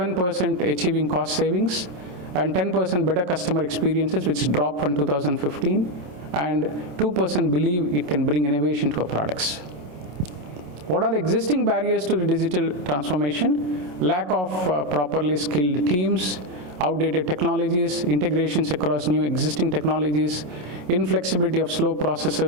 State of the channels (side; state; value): left; late; 27 ms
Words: achieving cost savings, and 10% better customer experiences, which dropped from 2015, and 2% believe it can bring innovation to our products. What are the existing barriers to the digital transformation? Lack of properly skilled teams, outdated technologies, integrations across new existing technologies, inflexibility of slow